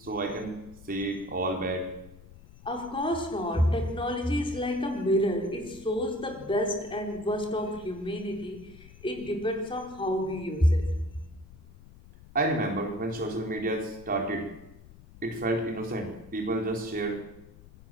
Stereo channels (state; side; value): noise; left; rumble, 20 dB below the sound